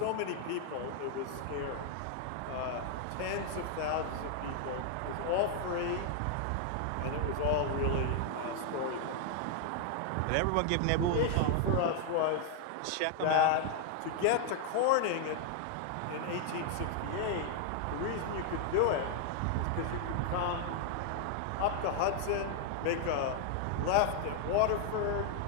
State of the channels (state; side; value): different; both; correlation 0.00